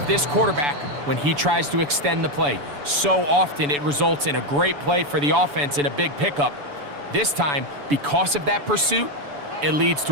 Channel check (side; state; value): left; late; 7.0 ms